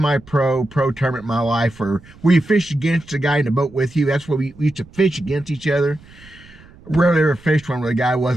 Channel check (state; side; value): noise; right; rumble, 23 dB below the sound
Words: pro tournament in my life where you fish against the guy in the boat with you. That's where we used to fish against each other. Rarely ever fished one where the guy